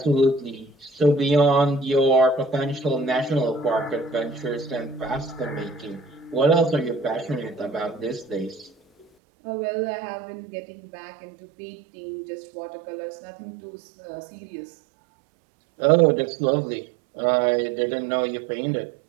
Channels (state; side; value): drops out; left; at 9.1 s